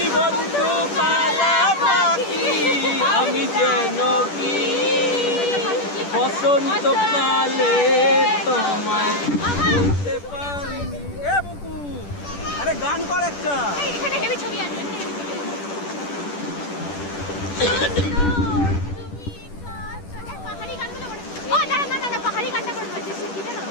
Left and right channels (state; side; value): late; right; 10 ms